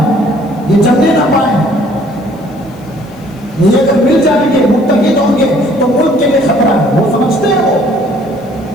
یہ جمنے نہ پائیں. یہ اگر مل جائیں گے، متحد ہوں گے تو ملک کے لیے خطرہ ہے. وہ سمجھتے ہیں، وہ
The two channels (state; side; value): noise; left; hiss, 30 dB below the sound